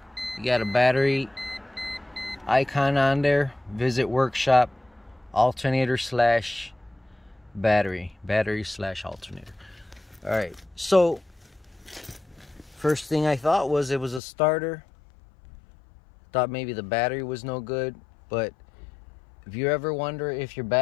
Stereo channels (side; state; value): right; drops out; at 14.2 s